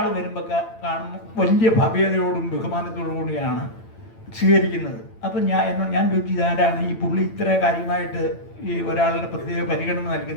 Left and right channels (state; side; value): late; right; 8.9 ms